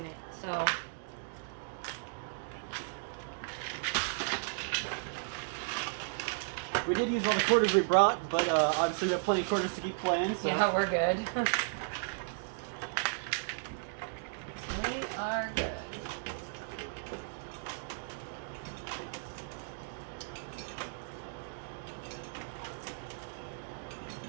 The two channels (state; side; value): silent; left; digital silence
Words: it, so. We did use all the quarters we brought, but obviously we have plenty of quarters to keep playing. So. Yeah, we're good. We are good.